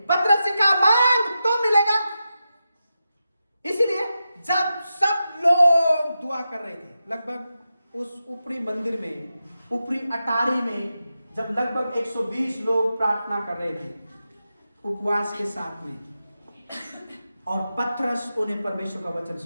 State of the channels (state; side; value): inverted; both; correlation -0.90